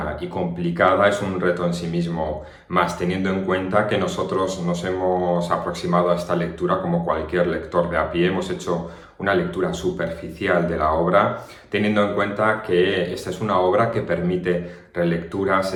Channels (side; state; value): both; identical; correlation 1.00